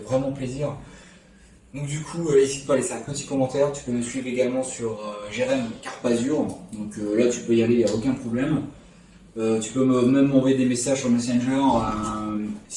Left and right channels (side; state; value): both; identical; correlation 1.00